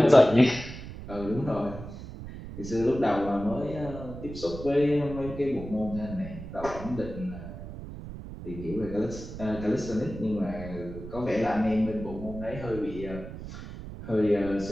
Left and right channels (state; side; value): noise; right; rumble, 11 dB below the sound